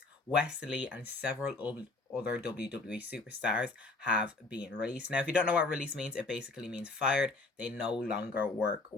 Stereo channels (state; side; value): quieter; right; 3.3 dB